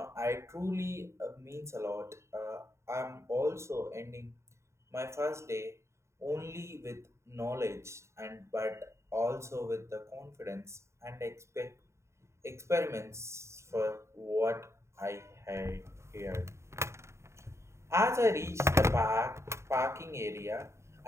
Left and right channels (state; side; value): late; left; 0.13 ms